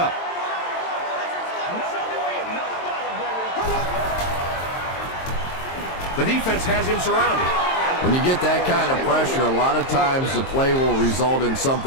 The defense has him surrounded. When you get that kind of pressure, a lot of times the play will result in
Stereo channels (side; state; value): right; late; 22 ms